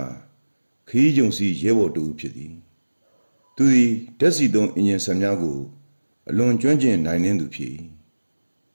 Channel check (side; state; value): both; inverted; correlation -1.00